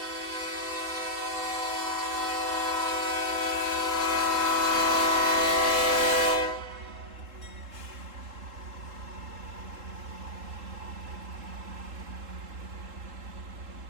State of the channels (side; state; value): left; late; 3.7 ms